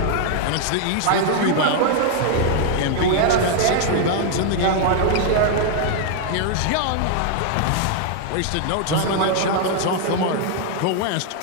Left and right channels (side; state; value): both; different; correlation 0.00